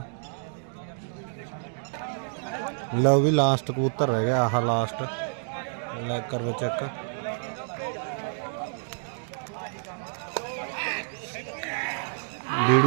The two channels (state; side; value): silent; left; digital silence